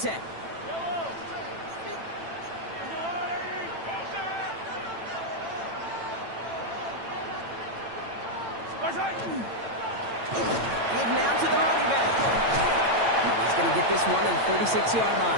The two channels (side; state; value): left; late; 8.9 ms